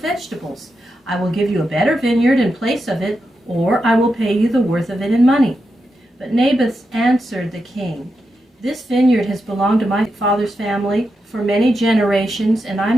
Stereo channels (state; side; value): normal; both; correlation 0.87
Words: I will give you a better vineyard in place of it, or I will pay you the worth of it in money." But Naboth answered the king, "This vineyard has belonged to my father's family for many generations, and